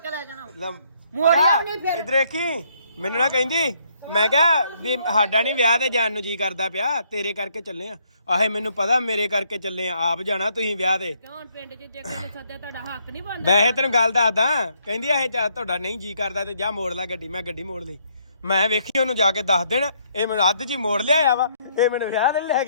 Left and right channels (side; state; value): both; inverted; correlation -0.70